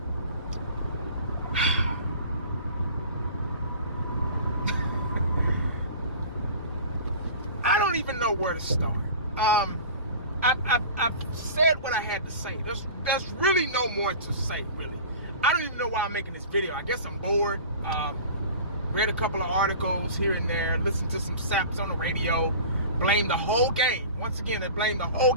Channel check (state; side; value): inverted; both; correlation -0.39